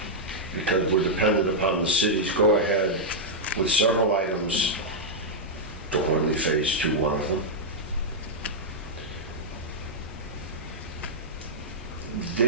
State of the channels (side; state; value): both; normal; correlation -0.07